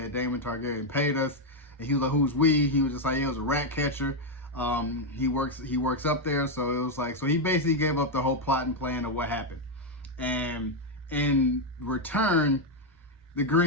Daemon Targaryen paid us. And he was like, who's we? He was just like, yeah, it was a rat catcher. He works up there, so it was like, so he basically gave up the whole plot and plan of what happened. And in return, the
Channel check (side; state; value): both; normal; correlation 0.02